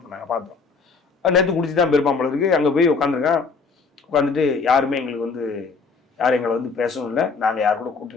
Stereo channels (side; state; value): right; quieter; 4.7 dB